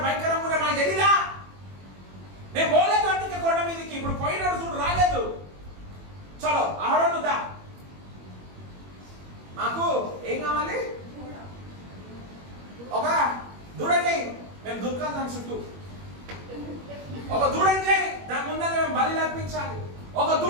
భయంకరంగా కూడా మాకు తెలియదా? నేను పోలేదు అందుకే కొండ మీదకి. ఇప్పుడు పోయినాడు చూడు, రాలేదు. చలో అహరోను దా, మాకు ఏం కావాలి? ఒక దూడని మేము దుర్గా దాని చుట్టూ ఒక దూడని చేయి, దాని ముందర మేము బలి అర్పించాలి. ఒక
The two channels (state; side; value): late; left; 21 ms